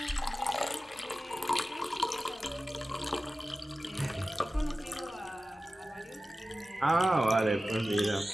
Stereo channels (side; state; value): both; normal; correlation 0.95